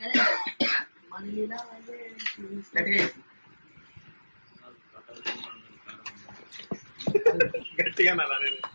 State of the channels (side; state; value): both; inverted; correlation -1.00